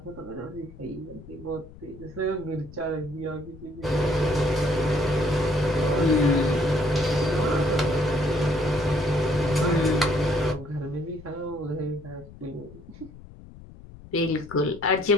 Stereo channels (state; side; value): noise; left; rumble, 19 dB below the sound